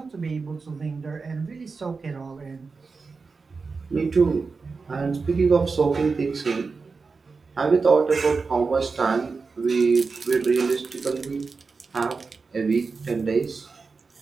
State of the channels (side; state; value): left; quieter; 4.5 dB